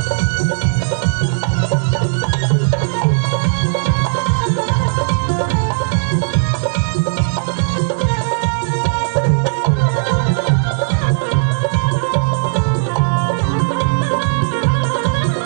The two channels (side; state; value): left; silent; digital silence